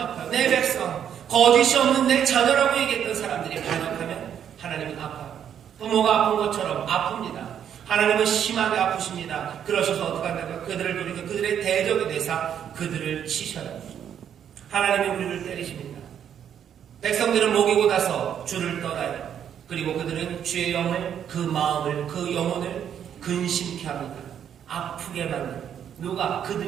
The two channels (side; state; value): left; quieter; 9.0 dB